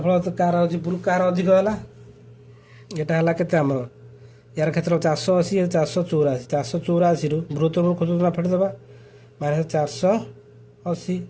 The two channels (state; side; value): identical; both; correlation 1.00